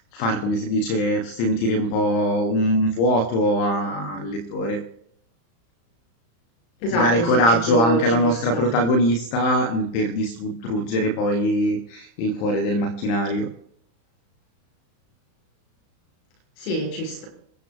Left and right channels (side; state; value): right; late; 35 ms